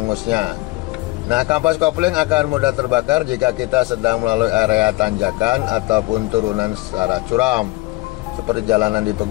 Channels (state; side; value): quieter; right; 21.0 dB